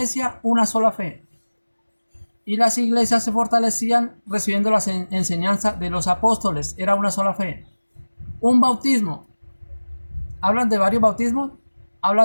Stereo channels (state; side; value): inverted; both; correlation -1.00